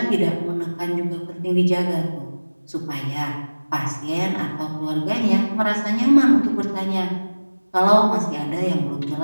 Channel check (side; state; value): both; inverted; correlation -1.00